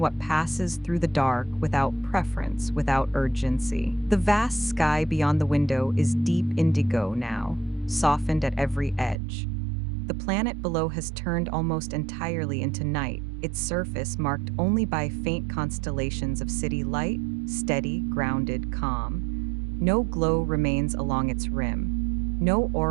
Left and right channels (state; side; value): drops out; left; at 9.2 s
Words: what passes through the dark without preference, without urgency. The vast sky beyond the window is deep indigo now, softened at every edge. The planet below has turned almost entirely into night, its surface marked only by faint constellations of city light, steady, grounded, calm. No glow remains along its rim. No